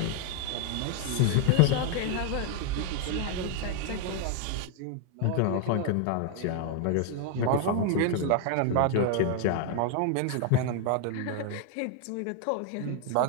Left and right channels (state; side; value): different; both; correlation 0.00